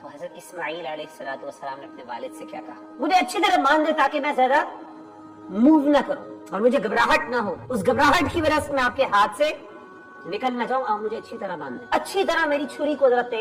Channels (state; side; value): identical; both; correlation 1.00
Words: تو حضرت اسماعیل علیہ السلام نے اپنے والد سے کیا کہا؟ مجھے اچھی طرح مان دے تاکہ میں زیادہ موو نہ کروں اور مجھے گھبراہٹ نہ ہو، اس گھبراہٹ کی وجہ سے میں آپ کے ہاتھ سے نکل نہ جاؤں، آپ مجھے اچھی طرح مان دیں، اچھی طرح میری چھری کو ذرا